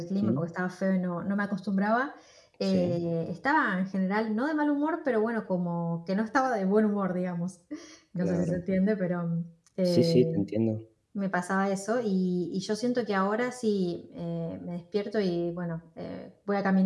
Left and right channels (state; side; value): identical; both; correlation 1.00